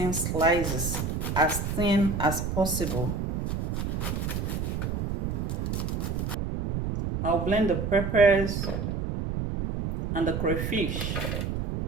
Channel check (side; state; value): right; noise; rumble, 2 dB below the sound